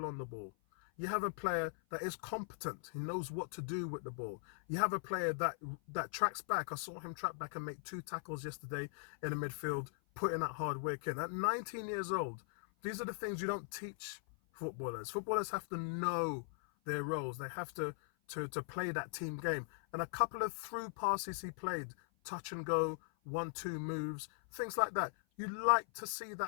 on the ball. You have a player that is competent. He knows what to do with the ball. You have a player that tracks back. I saw him track back and make 2 tackles yesterday in the midfield, putting that hard work in. At 19 years old, these are the things you don't teach footballers. Footballers have to know their roles. They have to play that team game. And a couple of through passes he played, touch and go, 1-2 moves, things like that. You like to see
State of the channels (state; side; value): silent; right; 51 dB below the other